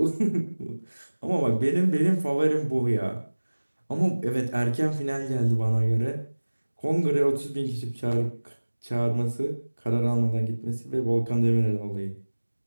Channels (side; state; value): both; inverted; correlation -1.00